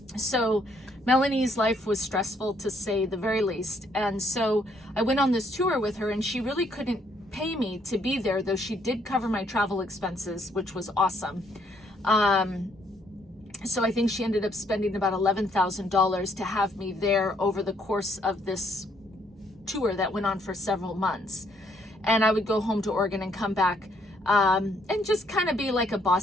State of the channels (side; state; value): both; normal; correlation 0.69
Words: So Melanie's life was stressful, to say the very least. And so I went on this tour with her, and she really couldn't pay me to be there, though she did cover my travel expenses, which was awesome. So I think she ended up spending about $11,000 to have me there over the course of this tour that went on for several months. And I would go home to Oregon and come back and just kind of be like a